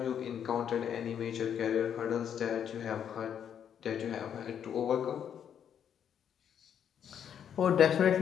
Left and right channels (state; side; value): quieter; right; 8.7 dB